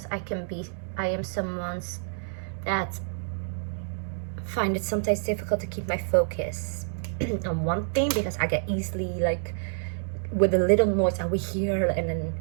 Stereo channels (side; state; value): left; silent; digital silence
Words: I am someone's that find it sometimes difficult to keep my focus on one thing, because I get easily, like, with a little noise I will hear, and then